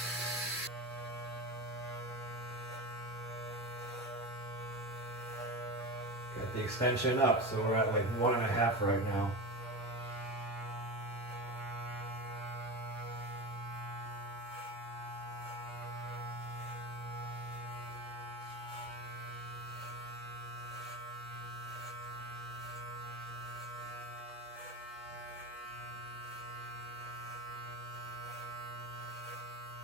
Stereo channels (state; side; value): normal; both; correlation 0.24